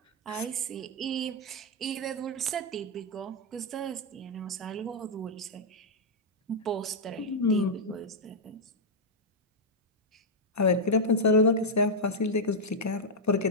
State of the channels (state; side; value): normal; both; correlation -0.03